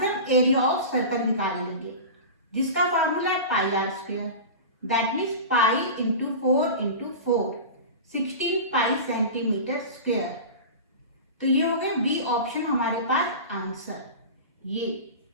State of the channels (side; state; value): both; inverted; correlation -0.30